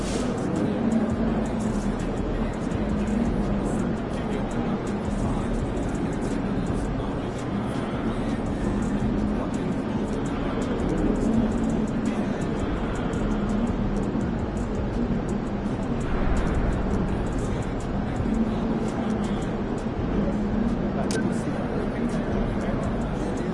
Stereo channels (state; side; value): identical; both; correlation 1.00